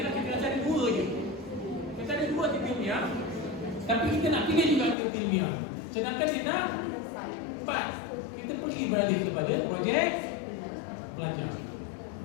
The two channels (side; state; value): right; drops out; at 5.0 s